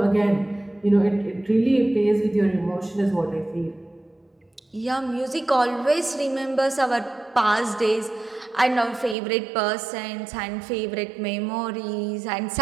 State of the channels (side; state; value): left; drops out; at 9.2 s